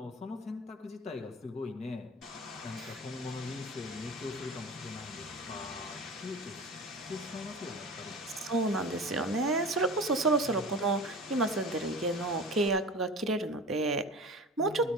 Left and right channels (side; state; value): both; normal; correlation 0.34